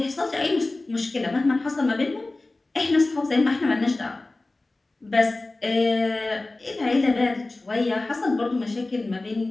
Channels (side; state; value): right; quieter; 3.0 dB